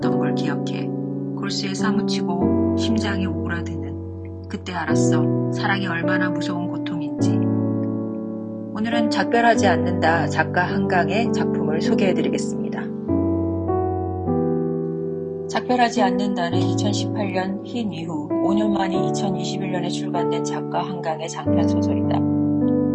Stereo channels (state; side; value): identical; both; correlation 1.00